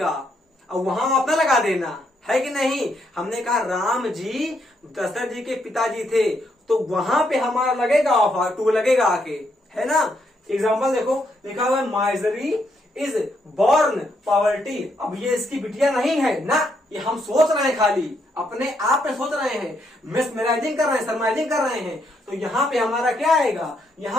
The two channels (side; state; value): both; normal; correlation 0.76